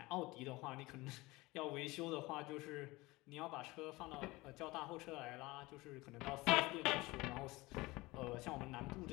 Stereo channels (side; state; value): right; quieter; 21.5 dB